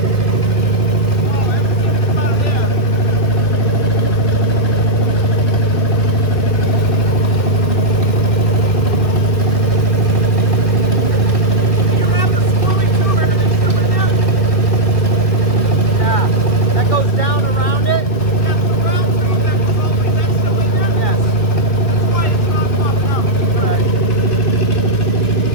Yeah. That goes down around it? Yes. Alright.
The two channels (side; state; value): right; late; 2.4 ms